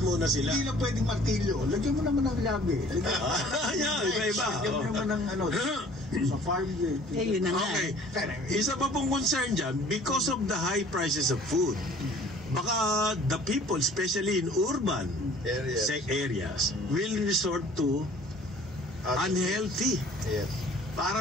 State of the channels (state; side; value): normal; both; correlation 0.51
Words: muna sila. Hindi lang pwedeng martilyo. Lagyan mo naman ng labi. Iba-iba. Lagyan mo naman ng sa farm gate. Yun na nga. Okay. Isa pa pong concern dyan, because of the high prices of food, baka the people, especially in urban areas, will resort to unhealthy. Yes.